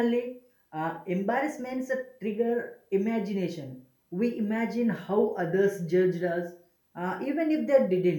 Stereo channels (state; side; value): identical; both; correlation 1.00